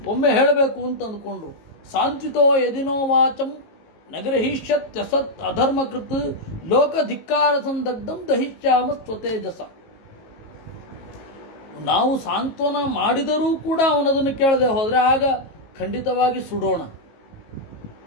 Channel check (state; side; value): late; right; 18 ms